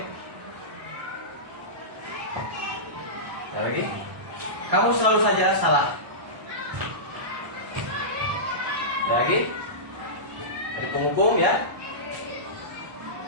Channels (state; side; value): late; left; 1.2 ms